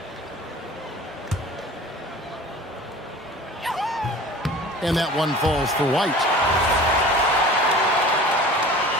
And that one falls for White.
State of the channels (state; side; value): normal; both; correlation 0.41